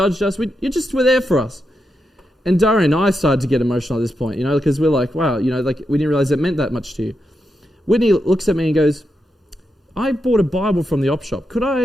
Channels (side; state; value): both; normal; correlation 0.86